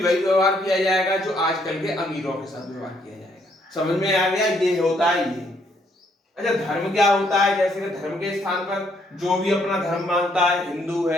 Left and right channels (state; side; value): normal; both; correlation 0.70